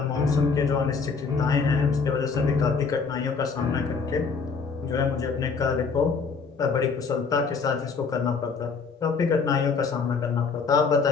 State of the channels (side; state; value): right; quieter; 5.0 dB